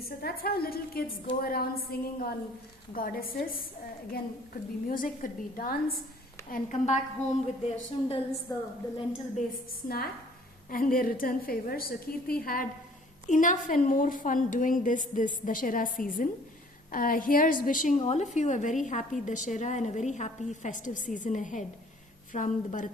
So that's how little kids go around singing on goddesses. Again, could be music, could be dance, and come back home with their sundals, the lentil-based snack, and their return favors. So Kirti had enough and more fun doing this Dashera season. Here's wishing all of you a very happy Dashera and a very happy festive season ahead from the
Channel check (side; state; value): both; normal; correlation 0.55